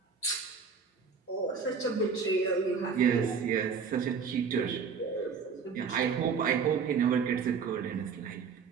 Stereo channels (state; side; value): quieter; left; 5.9 dB